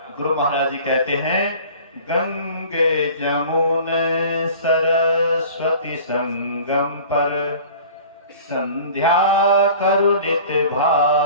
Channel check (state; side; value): inverted; both; correlation -0.44